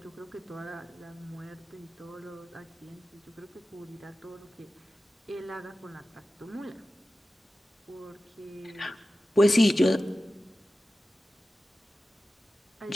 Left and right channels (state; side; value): normal; both; correlation 0.94